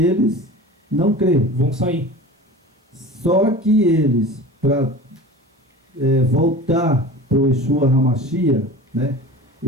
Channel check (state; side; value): normal; both; correlation 0.36